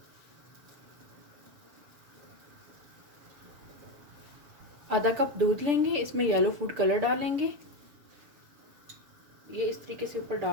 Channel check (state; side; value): late; left; 7.2 ms